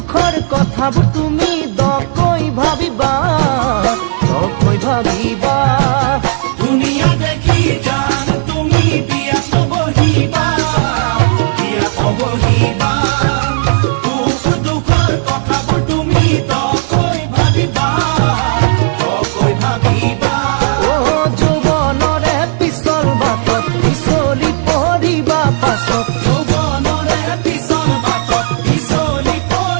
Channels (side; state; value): left; silent; digital silence